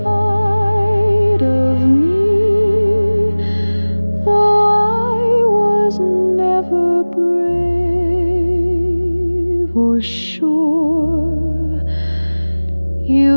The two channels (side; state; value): both; inverted; correlation -1.00